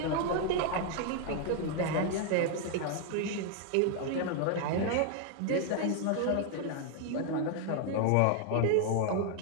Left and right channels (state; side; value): different; both; correlation 0.00